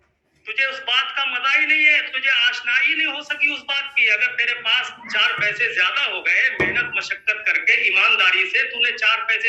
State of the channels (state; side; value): identical; both; correlation 1.00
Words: तुझे उस बात का मजा ही नहीं है, तुझे आशनाई नहीं हो सकी उस बात की। अगर तेरे पास 4 पैसे ज्यादा हो गए, मेहनत मशक्कत करके ईमानदारी से तूने 4